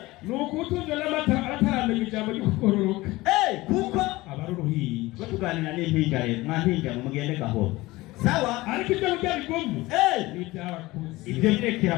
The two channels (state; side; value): quieter; right; 19.9 dB